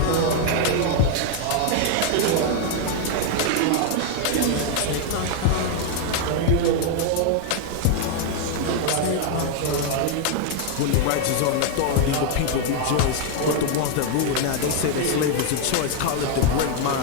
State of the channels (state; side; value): different; both; correlation 0.00